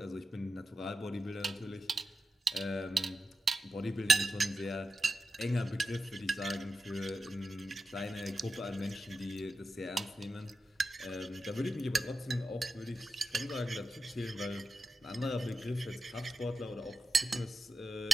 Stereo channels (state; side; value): normal; both; correlation 0.90